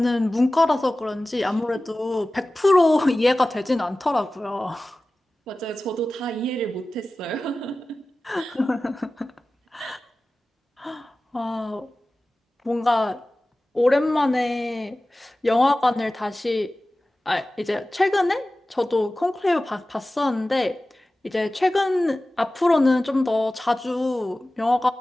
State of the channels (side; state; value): both; normal; correlation 0.96